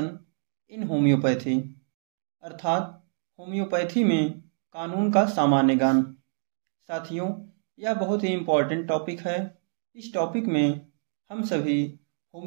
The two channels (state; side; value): silent; left; digital silence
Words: in homeopathy, अर्थात होम्योपैथी में कानून का सामान्य ज्ञान। साथियों, यह बहुत ही इम्पोर्टेंट टॉपिक है। इस टॉपिक में हम सभी